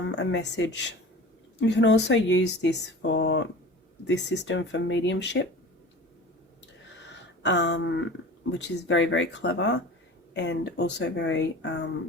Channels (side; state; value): both; normal; correlation 0.38